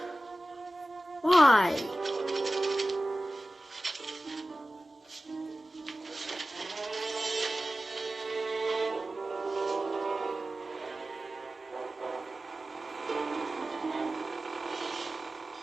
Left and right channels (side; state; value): both; normal; correlation 0.95